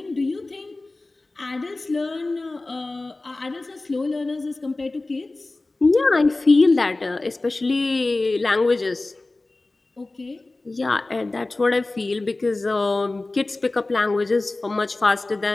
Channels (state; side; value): quieter; right; 3.1 dB